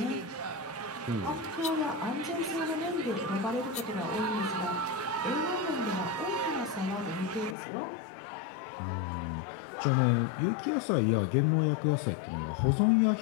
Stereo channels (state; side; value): drops out; right; at 7.6 s